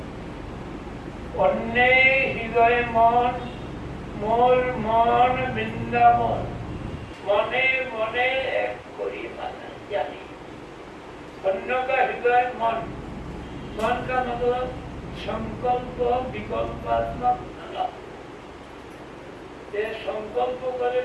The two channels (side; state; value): both; identical; correlation 1.00